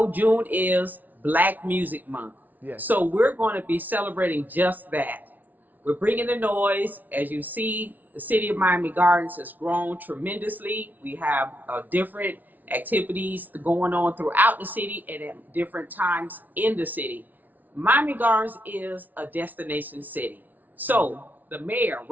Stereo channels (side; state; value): left; late; 0.080 ms